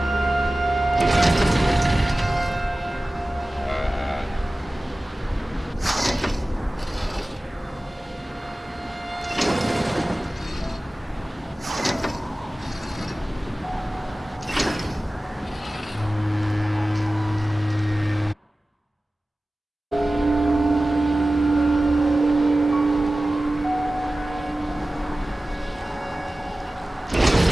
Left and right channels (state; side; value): normal; both; correlation 0.96